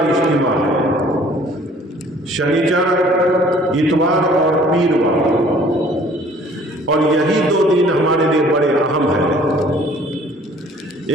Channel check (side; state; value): both; normal; correlation 0.54